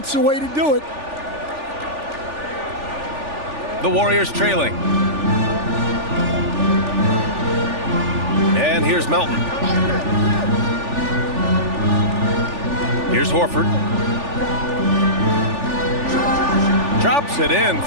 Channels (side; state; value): left; late; 3.4 ms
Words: the way to do it. The Warriors trailing. And here's Melton. Here's Horford. Drops it in